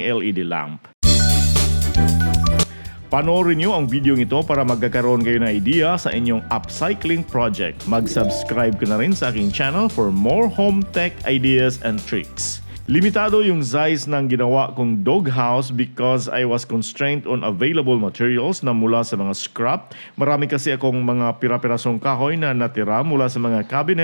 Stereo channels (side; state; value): both; inverted; correlation -1.00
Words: LED lamp. Panoorin niyo ang video ito para magkakaroon kayo ng idea sa inyong upcycling project. Mag-subscribe ka na rin sa aking channel for more home tech ideas and tricks. Limitado yung size ng ginawa kong doghouse because I was constrained on available materials na mula sa mga scrap. Marami kasi akong mga pira-pirasong kahoy na natira mula sa mga